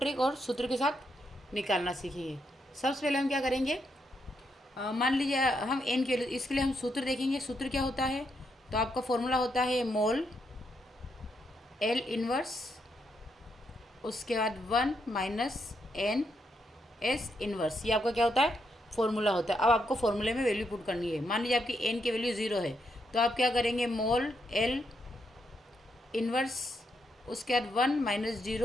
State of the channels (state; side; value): normal; both; correlation 0.79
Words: और सूत्र के साथ निकालना सीखेंगे। सबसे पहले हम क्या करेंगे, मान लीजिए हम एन के लिए, इसके लिए हम सूत्र देखेंगे। सूत्र क्या होता है, तो आपका फॉर्मूला होता है मोल एल इनवर्स, उसके बाद 1 माइनस एन एस इनवर्स। ये आपका क्या होता है, फॉर्मूला होता है। अब आपको फॉर्मूले में वैल्यू पुट करनी है। मान लीजिए आपकी एन की वैल्यू 0 है, तो आप क्या करेंगे, मोल एल इनवर्स, उसके बाद 1 माइनस